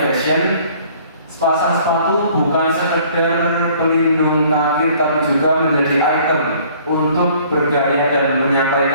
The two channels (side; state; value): both; inverted; correlation -0.56